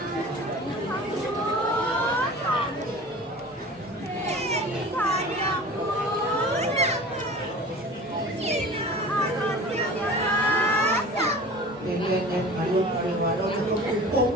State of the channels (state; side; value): normal; both; correlation 0.39